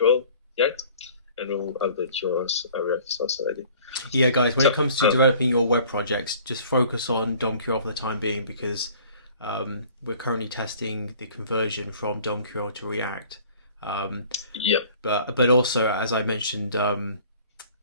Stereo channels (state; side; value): inverted; both; correlation -0.51